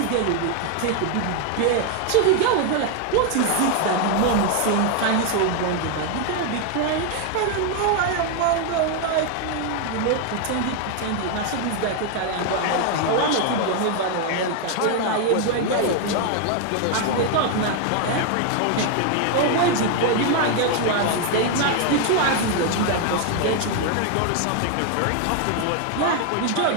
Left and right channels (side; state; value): both; different; correlation 0.01